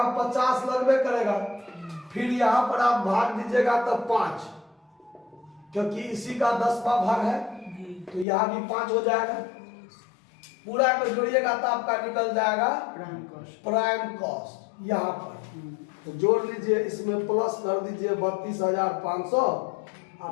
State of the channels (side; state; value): right; drops out; at 8.2 s